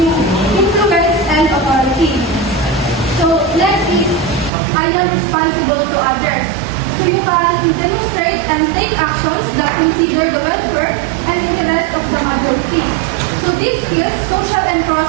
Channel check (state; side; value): drops out; left; at 4.5 s